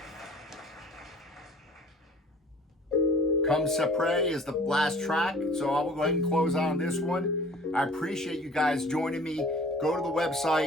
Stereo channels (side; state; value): both; normal; correlation 0.48